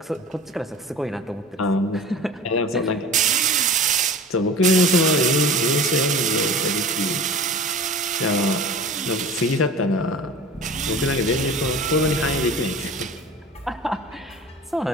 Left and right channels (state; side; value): normal; both; correlation 0.38